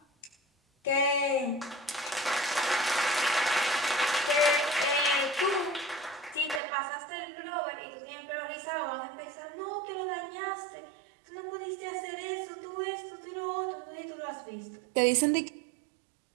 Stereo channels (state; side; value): drops out; left; at 6.6 s